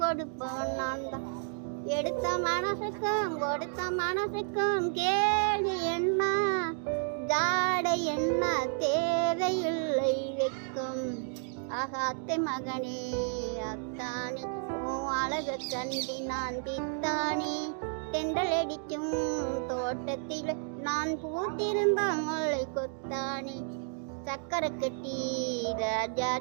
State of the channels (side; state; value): left; silent; 57 dB below the other